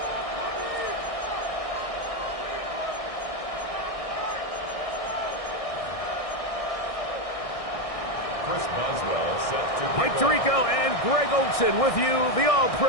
Mike Tirico and Greg Olson with you. The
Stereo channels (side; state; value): right; late; 1.6 ms